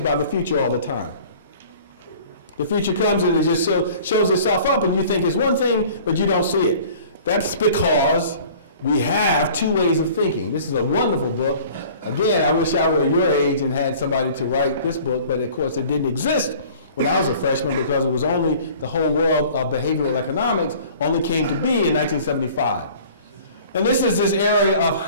by the future all the time. The future comes and it just shows itself up and you think it's one thing, but you don't see it. That's because we have two ways of thinking. This is a wonderful book. Again, I wish I were your age and had somebody to write this book, but of course it didn't exist when I was a freshman because it was only the whole world of behavioral economics only came to be in 1975. And this is this area of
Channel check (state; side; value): inverted; both; correlation -0.48